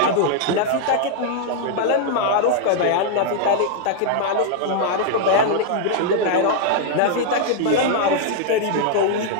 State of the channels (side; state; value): both; different; correlation 0.00